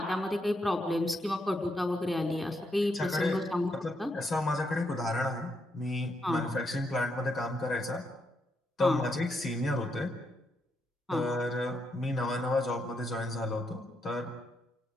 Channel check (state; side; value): normal; both; correlation 0.80